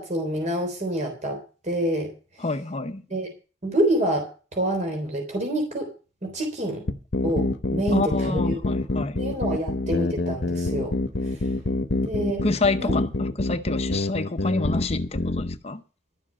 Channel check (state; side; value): normal; both; correlation 0.50